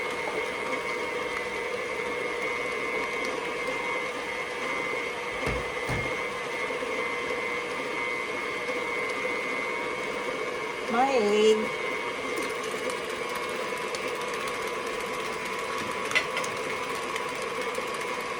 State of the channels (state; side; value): identical; both; correlation 1.00